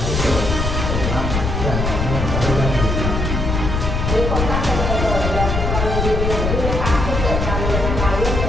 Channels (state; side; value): noise; left; rumble, 1 dB below the sound